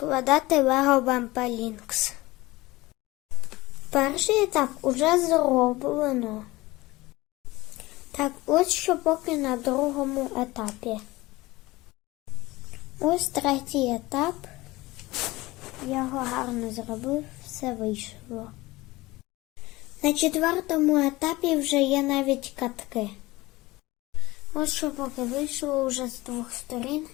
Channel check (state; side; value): quieter; right; 20.1 dB